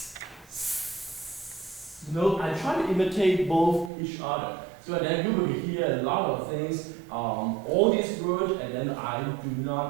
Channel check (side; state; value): left; drops out; at 3.9 s